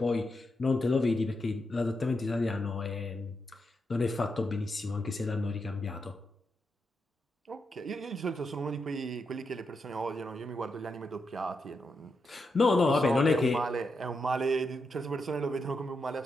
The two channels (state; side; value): normal; both; correlation 0.84